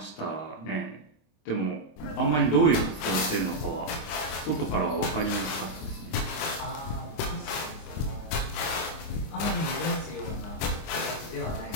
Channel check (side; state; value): right; late; 26 ms